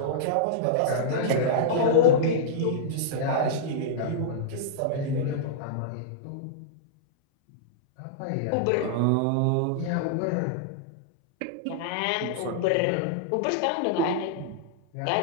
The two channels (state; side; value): different; both; correlation -0.02